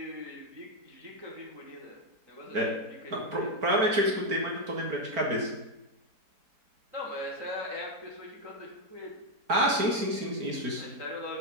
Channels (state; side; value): late; left; 4.4 ms